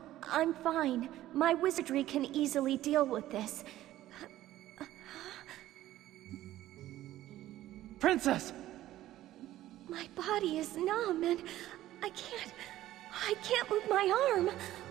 I'm fine. My wizardry can easily deal with this. Princess! My body is numb and I can't move my arm.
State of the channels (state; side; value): quieter; left; 14.4 dB